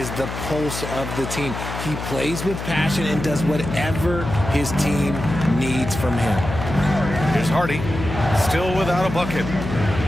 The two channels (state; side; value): noise; left; hum, 7 dB below the sound